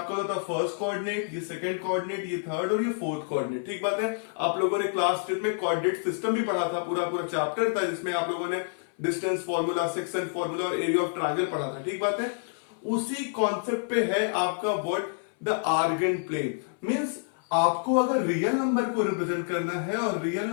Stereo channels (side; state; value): right; silent; 59 dB below the other